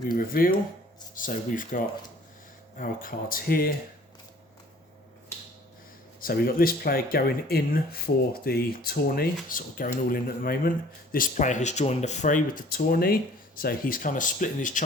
reveal. So we've got our cards here. So we've got this player going in for the tourney, sort of going all in at the moment. This player has joined the fray with the tourney, so he's kind of splitting his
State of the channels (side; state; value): both; normal; correlation 0.53